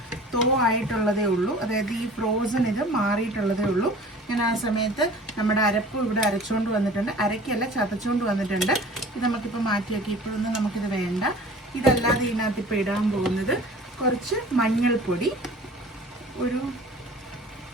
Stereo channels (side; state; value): both; normal; correlation 0.45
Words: തോ ആയിട്ടുള്ളതേ ഉള്ളൂ, അതായത് ഈ ഫ്രോസൺ ഇത് മാറിയിട്ടുള്ളതേ ഉള്ളൂ. ഞാൻ ആ സമയത്ത് നമ്മുടെ അരപ്പ് ഇവിടെ അരച്ചുകൊണ്ട് വന്നിട്ടുണ്ട്, അരക്കല്ല ചതച്ചുകൊണ്ട് വന്നിട്ടുണ്ട്. ഇത് നമുക്കിപ്പോൾ മാറ്റി വയ്ക്കാം, ഇപ്പോഴൊന്നും നമുക്കിത് വേണ്ട. ഇതല്ലാതെ ഇതിനകത്ത് ഇപ്പോൾ ഇടാൻ പോകുന്നത് കുറച്ച് മഞ്ഞൾപ്പൊടി, ഒരു